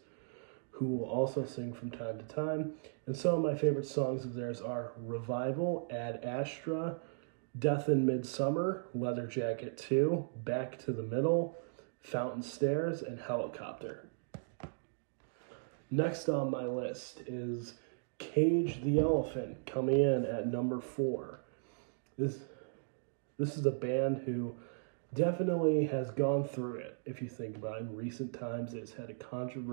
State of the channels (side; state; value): left; silent; digital silence